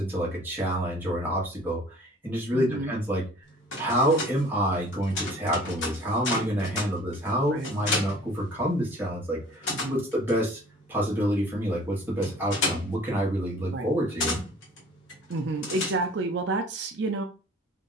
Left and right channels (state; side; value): normal; both; correlation 0.50